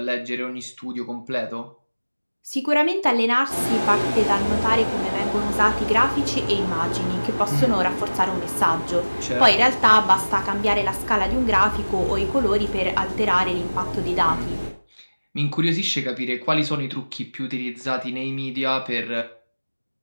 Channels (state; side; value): inverted; both; correlation -1.00